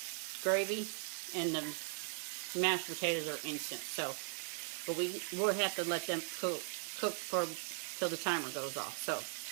gravy, and the mashed potatoes are instant. So, but we'll have to let them cook till the timer goes off. So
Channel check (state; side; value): silent; left; 52 dB below the other